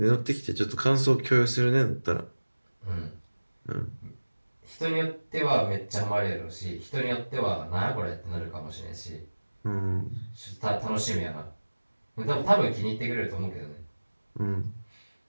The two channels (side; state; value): both; inverted; correlation -1.00